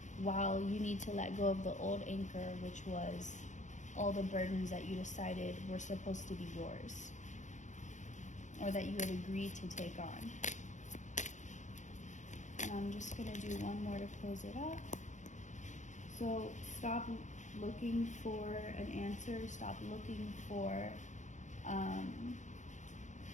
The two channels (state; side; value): late; right; 0.35 ms